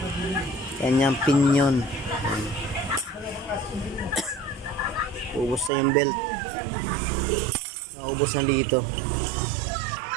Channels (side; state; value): left; drops out; at 5.7 s